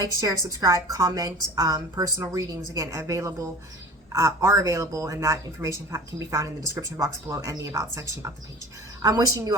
share, subscribe, comment. Personal readings, again, are available, and that information can be found in the description box below and the About section of the page. I'm wishing you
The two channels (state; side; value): normal; both; correlation 0.38